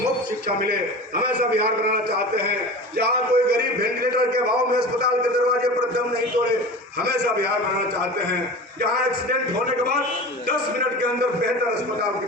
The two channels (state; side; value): normal; both; correlation 0.34